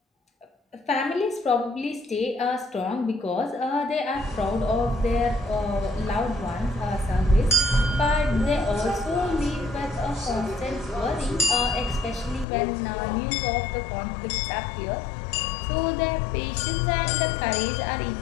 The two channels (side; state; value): right; drops out; at 12.5 s